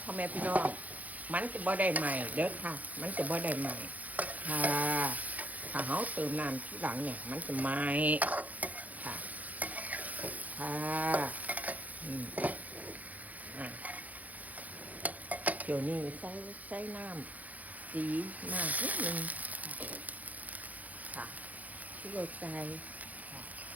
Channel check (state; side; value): late; left; 0.077 ms